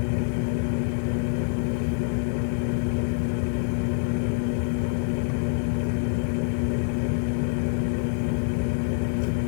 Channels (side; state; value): right; silent; 61 dB below the other